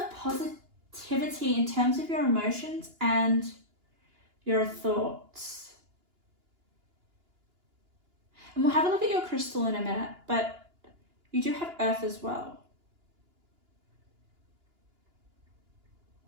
positivity in terms of your emotions and your thoughts. And we'll have a look at your crystal in a minute, but you do have earth as well.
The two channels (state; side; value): late; left; 2.9 ms